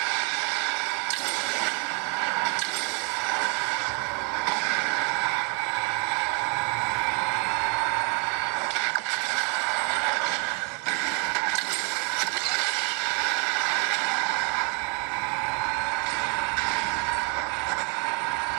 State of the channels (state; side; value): quieter; left; 34.1 dB